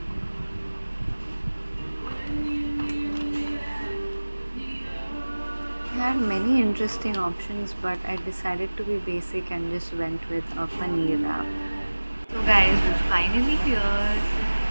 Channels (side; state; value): both; inverted; correlation -1.00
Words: I had many interesting options, but I decided to be basic and just went with a paneer wrap. So guys, we're finally here.